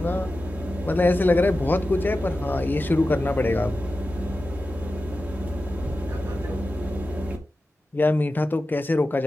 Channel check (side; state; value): both; normal; correlation 0.93